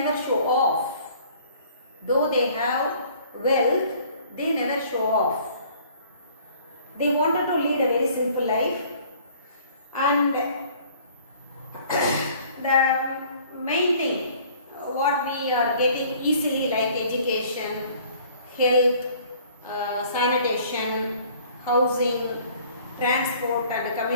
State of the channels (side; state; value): both; inverted; correlation -0.54